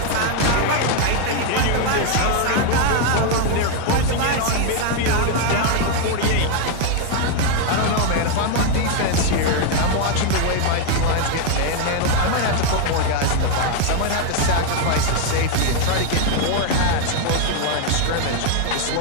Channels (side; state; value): both; different; correlation 0.00